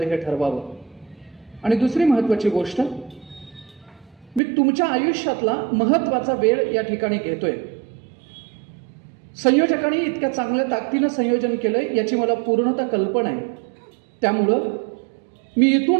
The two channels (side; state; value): left; drops out; at 4.4 s